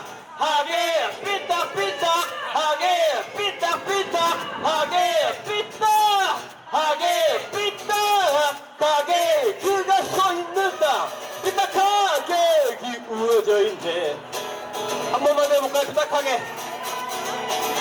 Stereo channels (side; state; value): both; identical; correlation 1.00